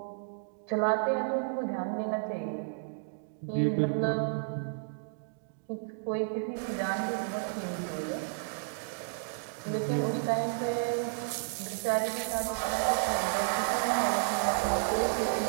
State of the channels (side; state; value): left; silent; digital silence